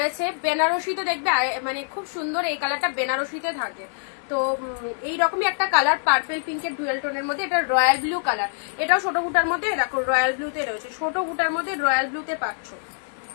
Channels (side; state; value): right; silent; digital silence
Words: বেনারসিতে দেখবে মানে খুব সুন্দর এই কালারটা বেনারসিতে থাকে। তো এইরকমই একটা কালার পার্পেল পিঙ্কের ডুয়েল টোনের মধ্যে, এটা রয়্যাল ব্লু কালার, এটাও ছোট বুটার মধ্যে, দেখো রয়্যাল ব্লুতে রয়েছে, ছোট বুটার মধ্যে রয়্যাল ব্লুতে পাচ্ছ,